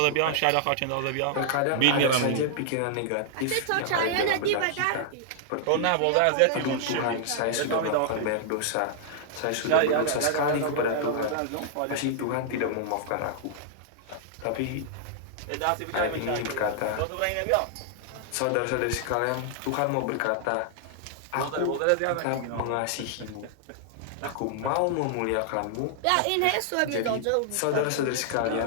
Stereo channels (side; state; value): both; different; correlation -0.01